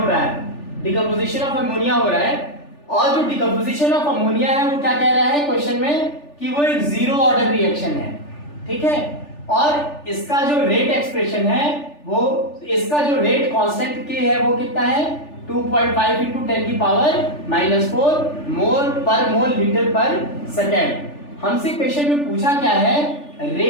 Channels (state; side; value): late; right; 3.4 ms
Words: रहा है, डिकम्पोजिशन ऑफ अमोनिया हो रहा है। और जो डिकम्पोजिशन ऑफ अमोनिया है वो क्या कह रहा है क्वेश्चन में कि वो एक जीरो ऑर्डर रिएक्शन है, ठीक है। और इसका जो रेट एक्सप्रेशन है वो, इसका जो रेट कांस्टेंट के है वो कितना है 2.5 into 10 की पावर -4 मोल पर मोल लीटर पर सेकेंड। हमसे क्वेश्चन में पूछा क्या है,